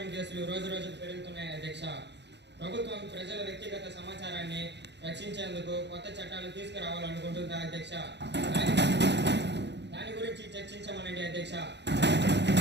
కేసులు రోజు రోజుకు పెరుగుతున్నాయి. అధ్యక్ష. ప్రభుత్వం ప్రజల వ్యక్తిగత సమాచారాన్ని రక్షించేందుకు కొత్త చట్టాలు తీసుకురావాలనుకుంటుందా అధ్యక్ష? దాని గురించి చర్చించమనండి అధ్యక్ష.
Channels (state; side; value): late; left; 0.50 ms